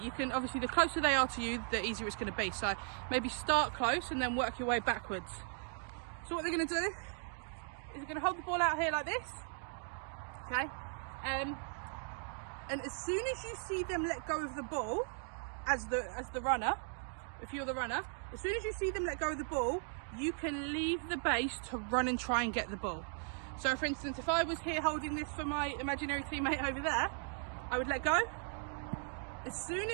You can, obviously, the closer they are to you, the easier it's going to be. So maybe start close and then work your way backwards. So what they're going to do is they're going to hold the ball out here like this. Okay. And as soon as you see them let go of the ball, as the runner, if you're the runner, as soon as you see them let go of the ball, you can leave the base to run and try and get the ball. So for instance, if I was here holding this for my imaginary teammate over there, I would let go. As soon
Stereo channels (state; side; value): silent; left; 53 dB below the other